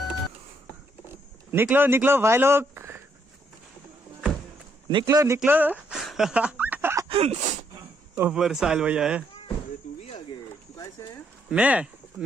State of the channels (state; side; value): normal; both; correlation 0.73